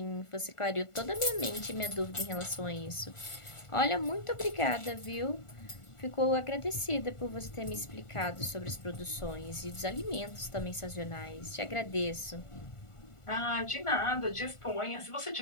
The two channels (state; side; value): late; right; 1.4 ms